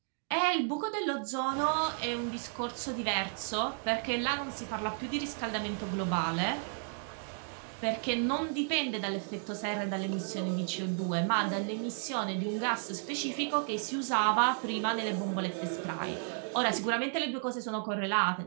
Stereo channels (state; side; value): silent; left; 56 dB below the other